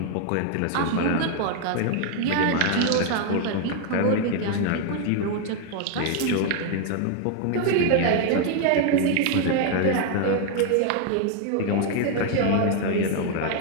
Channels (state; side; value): different; both; correlation 0.00